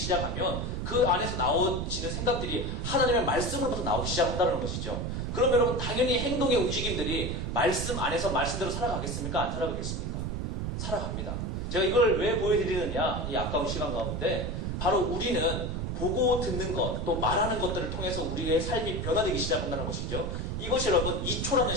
그 안에서 나오지는 생각들이 하나님의 말씀으로부터 나오기 시작한다는 것이죠. 그럼 여러분 당연히 행동의 움직임들이 말씀 안에서 말씀대로 살아가겠습니까? 안 살아가겠습니까? 살아갑니다. 제가 이걸 왜 보여드리느냐, 이 아까운 시간 가운데 바로 우리는 보고 듣는 것, 또 말하는 것들을 통해서 우리의 삶이 변화되기 시작한다는 것이죠. 이것이 여러분 2초라는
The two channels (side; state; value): right; noise; rumble, 3 dB below the sound